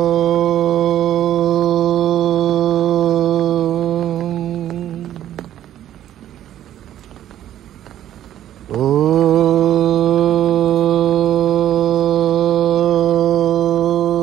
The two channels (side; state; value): left; quieter; 11.9 dB